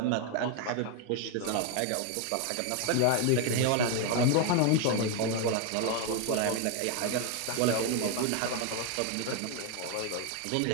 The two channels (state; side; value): different; both; correlation 0.01